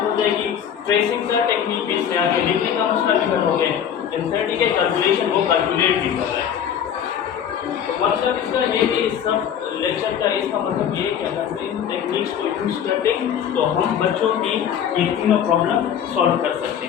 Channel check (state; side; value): quieter; right; 8.9 dB